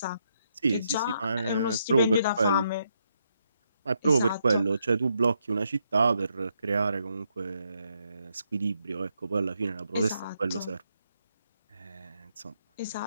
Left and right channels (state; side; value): inverted; both; correlation -0.78